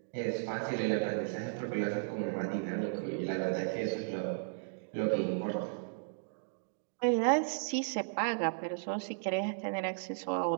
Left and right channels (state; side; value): silent; left; digital silence